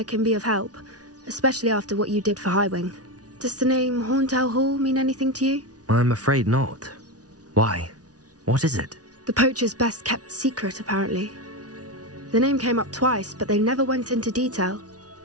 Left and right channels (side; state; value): left; late; 0.68 ms